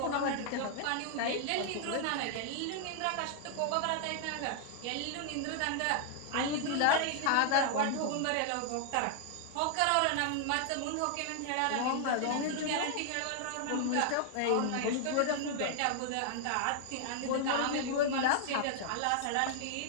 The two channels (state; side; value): different; both; correlation 0.00